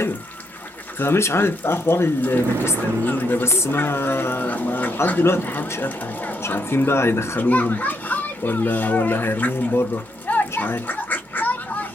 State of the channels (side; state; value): both; normal; correlation 0.77